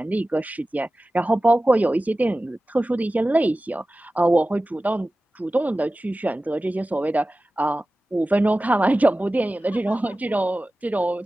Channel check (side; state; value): both; normal; correlation 0.96